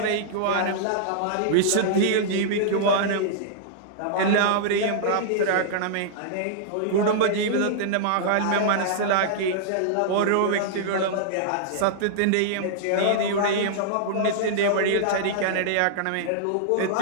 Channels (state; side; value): different; both; correlation -0.02